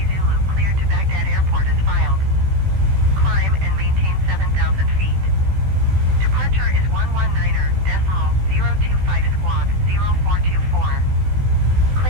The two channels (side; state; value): left; late; 16 ms